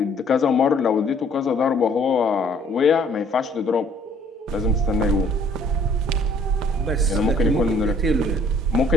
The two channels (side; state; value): both; normal; correlation 0.59